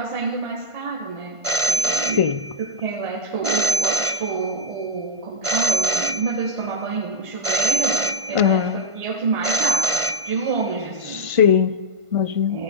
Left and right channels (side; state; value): left; late; 1.5 ms